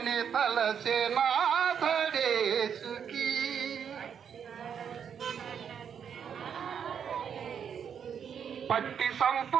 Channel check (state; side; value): quieter; left; 7.7 dB